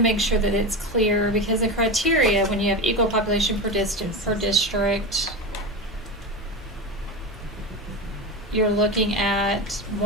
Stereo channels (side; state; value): both; normal; correlation 0.21